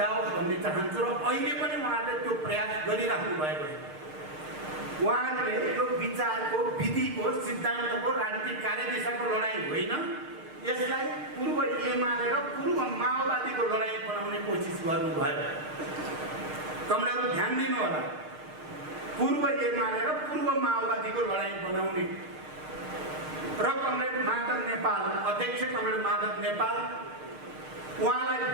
भन्ने चाहन्छु र अहिले पनि उहाँले त्यो प्रयास गरिराख्नु भएको छ। उहाँहरूले यो विचारको, विधिको, सिद्धान्तको, राजनीतिक कार्यदिशाको लडाइँ होइन, यसलाई पूर्व एमाले र पूर्व माओवादीको लडाइँ बनाउने कोसिस गर्नुभयो। कमलको ध्यान दिनु होला, पूर्व एमाले र पूर्व माओवादीको लडाइँ बनाउने र कमरेड माधव नेपाल, अध्यक्ष कमरेड माधव नेपाल, उहाँलाई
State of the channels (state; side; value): late; left; 6.6 ms